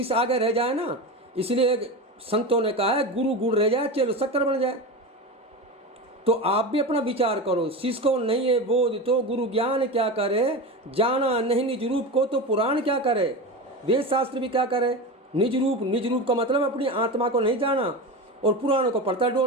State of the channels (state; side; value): normal; both; correlation 0.24